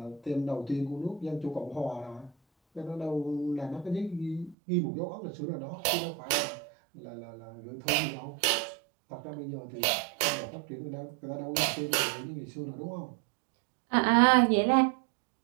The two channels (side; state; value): left; drops out; at 4.5 s